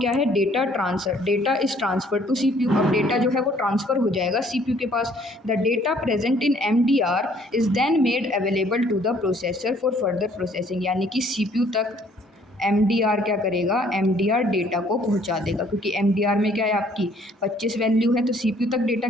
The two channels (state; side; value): normal; both; correlation 0.61